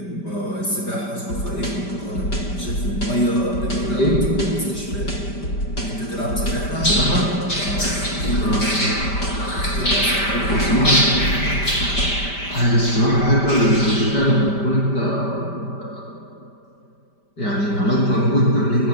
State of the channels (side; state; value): right; late; 5.1 ms